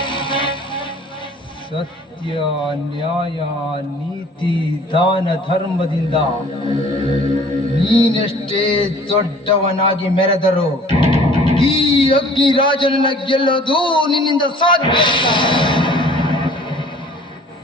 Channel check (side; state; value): both; normal; correlation 0.50